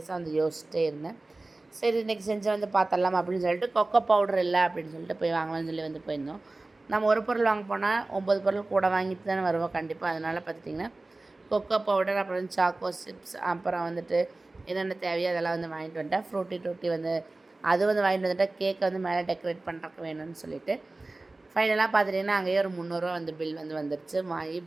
வந்து யோசிச்சிட்டே இருந்தேன். சரி இன்றைக்கி செஞ்சு வந்து பார்த்துடலாம் அப்படின்னு சொல்லிட்டு கொக்கோ பவுடர் இல்லை அப்படின்னு சொல்லிட்டு போய் வாங்கலாம்னு சொல்லி வந்து போயிருந்தோம். நம்ம ஒரு பொருள் வாங்க போனால் 9 பொருள் கூட வாங்கிட்டு தானே வருவோம் கண்டிப்பாக. அதனால் பார்த்துட்டிங்கன்னா கொக்கோ பவுடர் அப்புறம் சாக்கோ சிப்ஸ் அப்புறம் வந்துட்டு என்னென்ன தேவையோ அதெல்லாம் வந்து வாங்கிட்டு வந்துட்டேன். ஃப்ரூட்டி டூட்டி வந்து அது வந்து வாங்கிட்டு வந்துட்டேன். கேக்கை வந்து மேலே டெக்கரேட் பண்ணுறக்கு வேணும்னு சொல்லிவிட்டு ஃபைனலாக பார்த்துட்டிங்கன்னா அங்கேயே ஒரு 300 ரூபா வந்து பில் வந்து வந்துடுச்சு. வாங்கி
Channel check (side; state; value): left; quieter; 3.1 dB